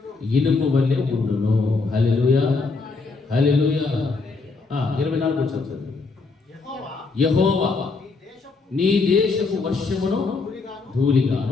ఇనుము వలె ఉండును. హల్లెలూయా, హల్లెలూయా. 24 చదువు. యెహోవా నీ దేశపు వర్షమును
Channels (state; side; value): quieter; right; 4.0 dB